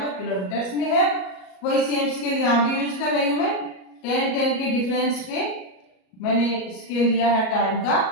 किलोमीटर्स में है, वही सेम स्केल यहाँ भी यूज कर रही हूँ मैं। 10-10 के डिफरेंस पे मैंने स्केल लिया है टाइम का,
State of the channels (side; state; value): right; late; 37 ms